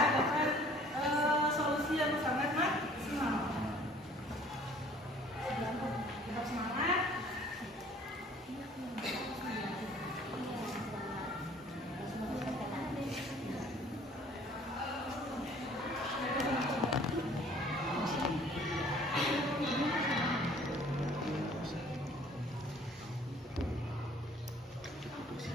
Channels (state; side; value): normal; both; correlation 0.54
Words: dapat solusi yang sangat maksimal. Tetap semangat.